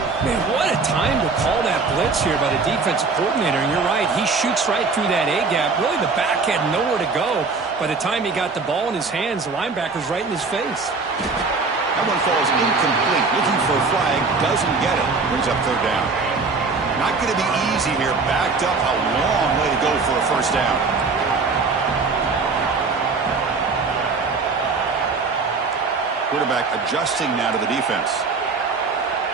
Man, what a time to call that blitz here by the defensive coordinator. And you're right, he shoots right through that A-gap. Really, the back had nowhere to go. By the time he got the ball in his hands, the linebacker's right in his face. That one falls incomplete. Looking for a flag, doesn't get it. Brings up third down. Not going to be easy here. Backed up, a long way to go for a first down. Quarterback adjusting now to the defense.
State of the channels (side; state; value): left; quieter; 4.3 dB